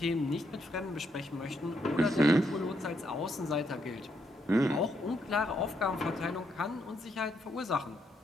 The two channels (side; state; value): both; normal; correlation 0.76